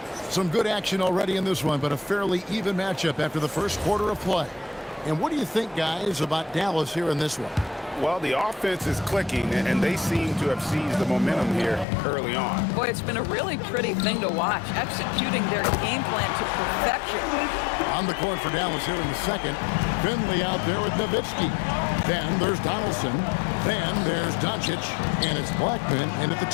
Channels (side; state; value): right; drops out; at 11.9 s